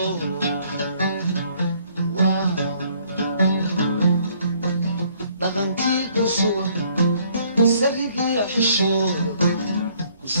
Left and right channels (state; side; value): inverted; both; correlation -0.63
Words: dhaqankii ku sugan saligii xishooda ku